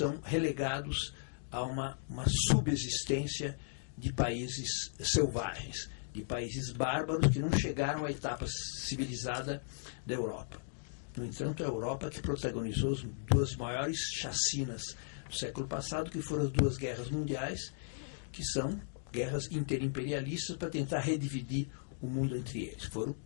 relegados a uma subexistência de países selvagens, de países bárbaros que não chegaram à etapa civilizada da Europa. No entanto, a Europa que protagonizou as duas maiores chacinas do século passado, que foram as duas guerras mundiais, que são guerras interimperialistas para tentar redividir o mundo entre eles. Foram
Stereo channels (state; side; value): silent; right; digital silence